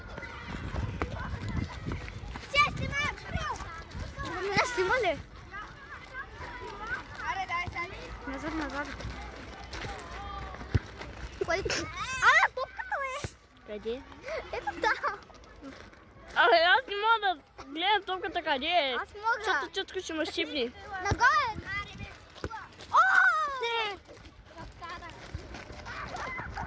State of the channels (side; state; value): both; identical; correlation 1.00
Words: Снима ли? Назад, назад. Топката е! Къде? Ето там. Абе, аз не мога да гледам топката къде е. Аз мога. Защото чутко ще ме щипни. Нагоре!